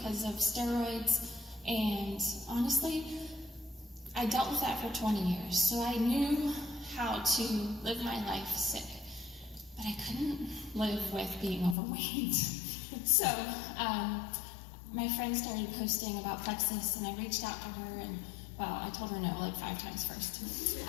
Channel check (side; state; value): right; drops out; at 11.8 s